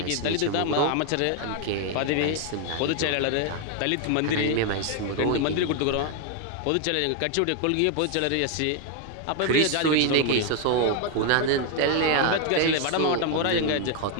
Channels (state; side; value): different; both; correlation 0.01